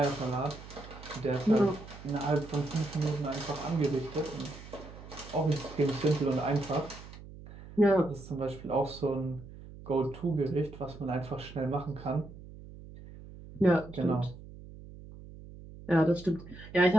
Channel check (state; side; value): noise; right; hum, 16 dB below the sound